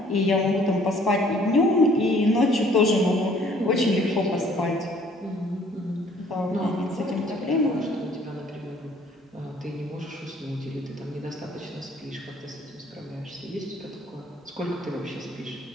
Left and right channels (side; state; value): both; normal; correlation 0.58